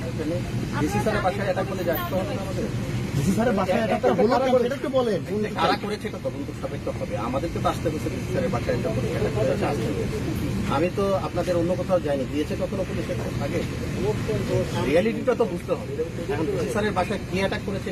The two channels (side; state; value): both; identical; correlation 1.00